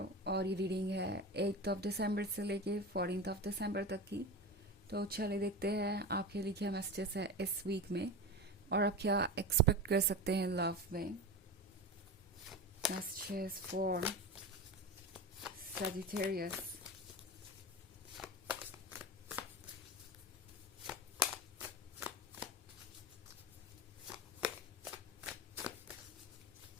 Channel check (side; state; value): both; normal; correlation 0.26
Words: और ये reading है 8 दिसंबर से लेके 14 दिसंबर तक की। तो चलिए देखते हैं आपके लिए क्या मैसेजेस है इस वीक में और आप क्या एक्सपेक्ट कर सकते हैं लव में। Messages for Sagittarius.